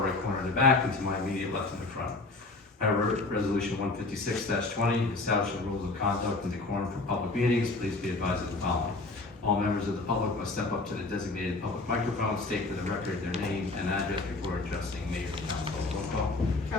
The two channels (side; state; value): right; quieter; 3.3 dB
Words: right corner of the back and to my immediate left in the front. I have resolution 156-20, establishing rules of conduct and decorum for public meetings. Please be advised of the following. All members of the public must step up to the designated public microphone, state for the record their name and address before addressing mayor and council. Roll call.